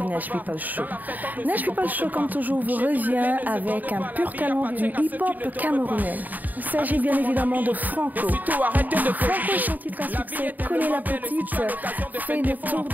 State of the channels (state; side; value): late; left; 0.084 ms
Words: Nash People Show. Nash People Show, comme toujours, vous revient avec un pur talent du hip-hop camerounais. Il s'agit bien évidemment de Franco. Franco, son titre à succès, Coller la petite, fait le tour